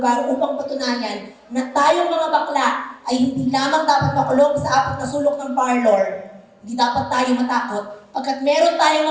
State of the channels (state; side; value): identical; both; correlation 1.00